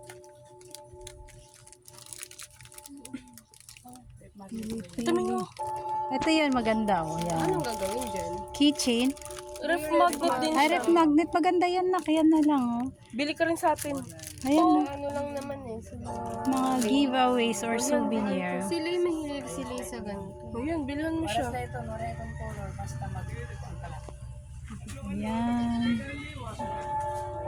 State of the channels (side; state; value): both; identical; correlation 1.00